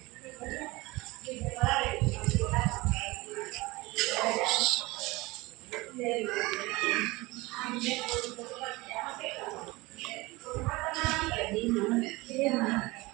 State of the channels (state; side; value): quieter; left; 22.0 dB